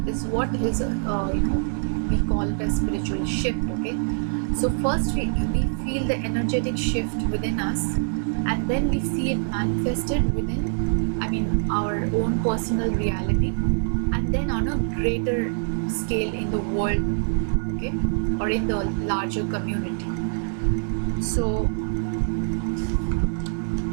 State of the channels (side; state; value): left; silent; 61 dB below the other